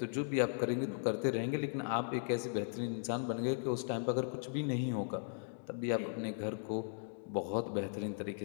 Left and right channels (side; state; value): right; silent; digital silence